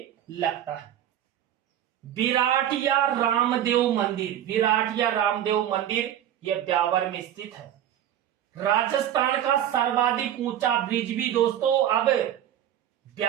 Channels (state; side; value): quieter; left; 11.0 dB